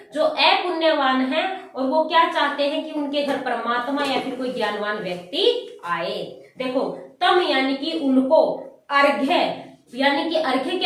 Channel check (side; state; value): both; identical; correlation 1.00